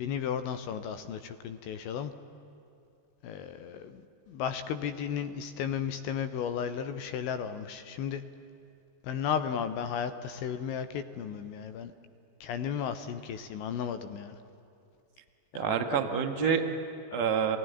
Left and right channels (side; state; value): right; late; 18 ms